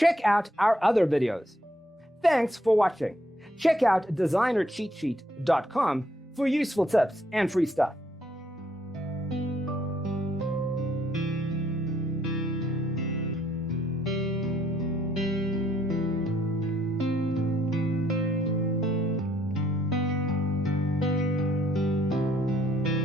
out our other videos. Thanks for watching. Check out designercheatsheet.com for useful tips and free stuff.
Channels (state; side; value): normal; both; correlation 0.70